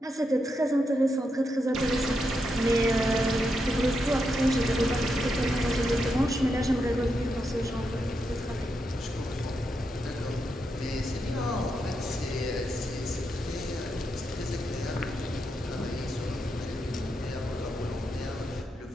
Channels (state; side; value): normal; both; correlation 0.84